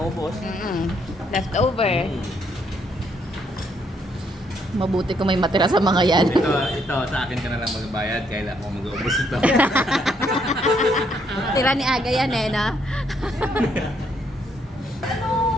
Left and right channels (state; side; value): normal; both; correlation 0.72